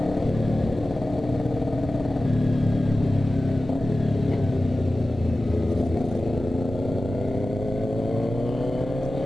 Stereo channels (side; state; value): both; normal; correlation 0.95